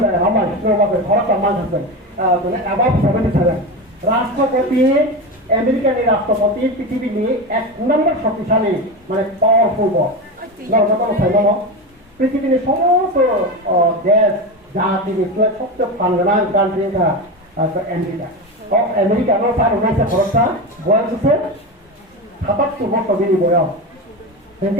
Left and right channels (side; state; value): both; normal; correlation 0.20